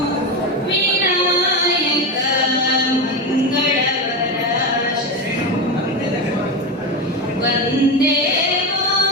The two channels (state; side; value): normal; both; correlation 0.16